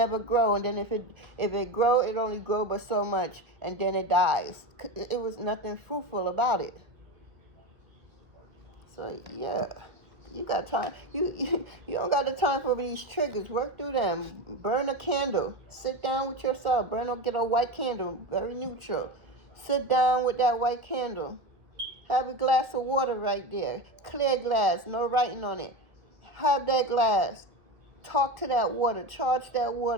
grow. And then if it grow, it only grow but so much, and then it dies. It was nothing fruitful about it. So yeah, you got time. You don't got the time for these triggers. Work through them. Burn a candle. Sit down with yourself. Get a white candle, very neutral. Sit down with that white candle. Have a glass of water right there. Clear glass, no writing on it. Have that glass. Talk to that water. Charge that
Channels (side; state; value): left; late; 1.7 ms